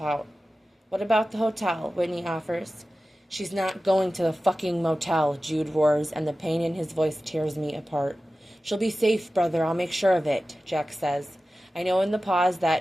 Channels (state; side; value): normal; both; correlation 0.95